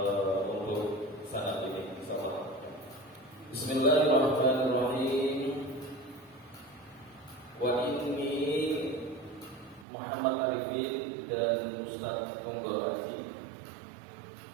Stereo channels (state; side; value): drops out; left; at 9.9 s